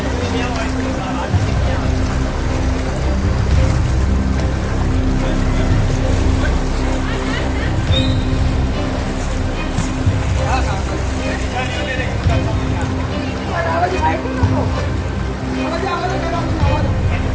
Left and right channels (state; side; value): identical; both; correlation 1.00